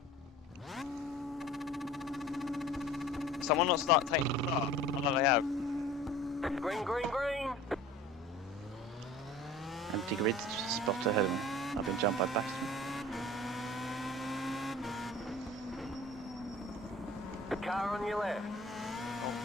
Someone not start taking the start. I know they have. Green, green, green. Empty grid spot ahead of me. I've been jumped by Bathurst. The car on your left. Oh,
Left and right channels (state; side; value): normal; both; correlation 0.43